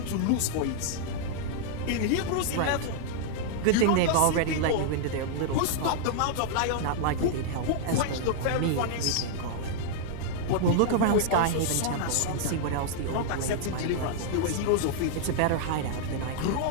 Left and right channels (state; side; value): different; both; correlation -0.01